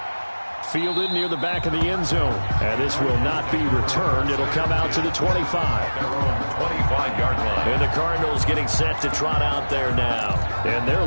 Fielded near the back of the end zone. And this will not be returned. It'll come out to the 25. Their own 25-yard line. And the Cardinals getting set to trot out there now. And their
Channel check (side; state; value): both; inverted; correlation -1.00